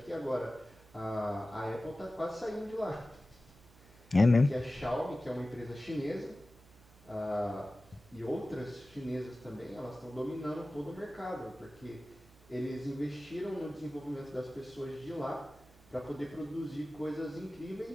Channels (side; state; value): right; noise; hum, 26 dB below the sound